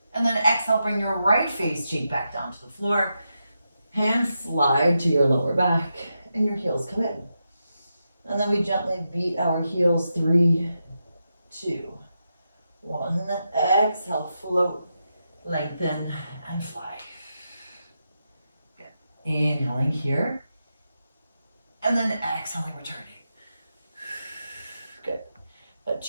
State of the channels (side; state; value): both; inverted; correlation -0.87